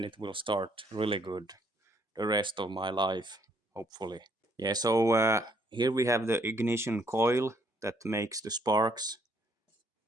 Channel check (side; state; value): both; normal; correlation 0.67